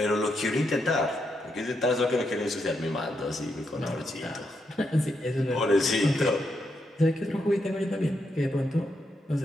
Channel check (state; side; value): normal; both; correlation 0.81